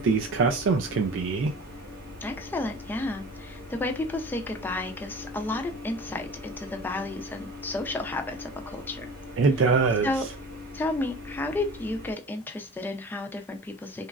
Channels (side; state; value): both; normal; correlation 0.40